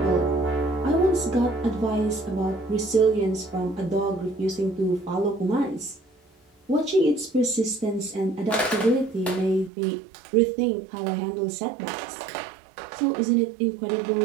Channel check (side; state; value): left; drops out; at 9.7 s